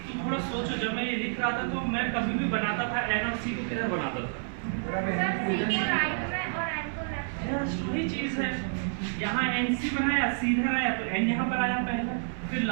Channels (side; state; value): left; silent; digital silence